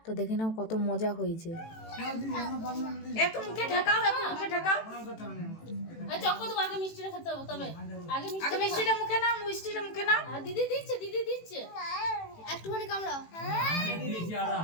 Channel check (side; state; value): right; late; 18 ms